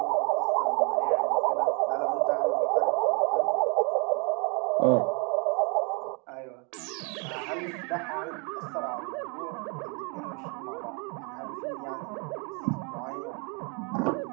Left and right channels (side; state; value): left; quieter; 33.7 dB